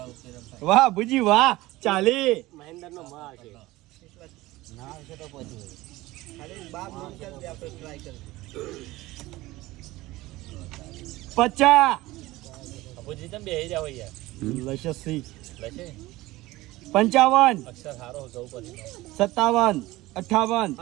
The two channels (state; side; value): quieter; left; 18.7 dB